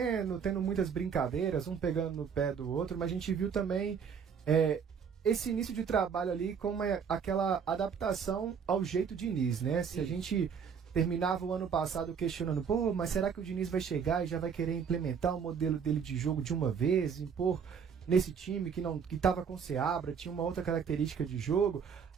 tendo muitas brincadeiras, um pegando no pé do outro, mas a gente viu também esse início de trabalho ali com aquela adaptação ao jeito Diniz, né? Se a gente terminava o ano passado questionando, mas será que o Diniz vai chegar e já vai querer implementar o modelo dele de jogo de uma vez, impor nesse time que estava com Seabra, tinha uma outra característica de jogo?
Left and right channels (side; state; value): left; quieter; 6.8 dB